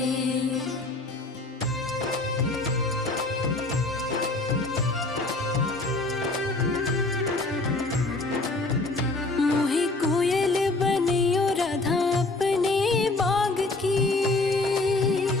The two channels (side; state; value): right; quieter; 3.1 dB